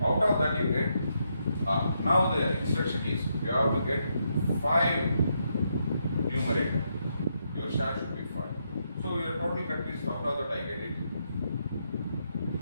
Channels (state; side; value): inverted; both; correlation -0.79